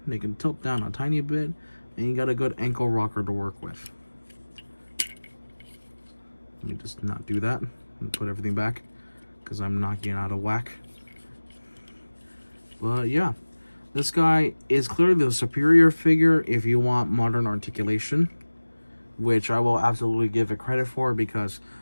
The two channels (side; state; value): both; inverted; correlation -1.00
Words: They can tilt down a tiny bit. And you got a good ankle rocker to work with. Let me just not do that and put everything back, because I'm knocking it out of whack. But yeah, this guy is clearly the superior figure if you want modern articulation, which I will absolutely give it credit for, because